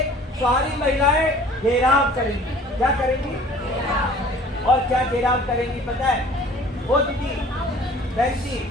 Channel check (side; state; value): both; normal; correlation 0.49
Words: सारी महिलाएं घेराव करेंगी। क्या करेंगी? और क्या घेराव करेंगी पता है? वो दीदी, बहन जी,